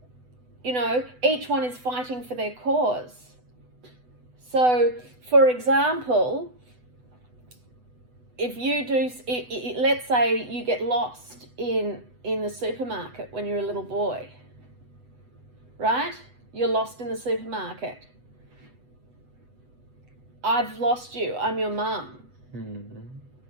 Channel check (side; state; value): left; late; 8.0 ms